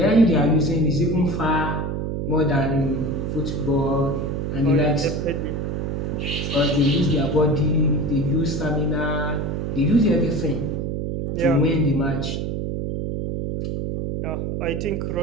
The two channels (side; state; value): right; noise; hum, 2 dB below the sound